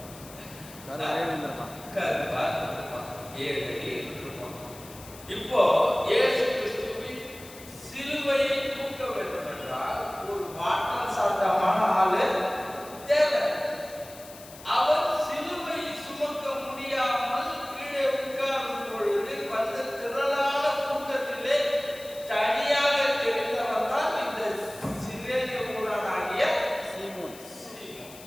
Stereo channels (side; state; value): left; noise; hiss, 18 dB below the sound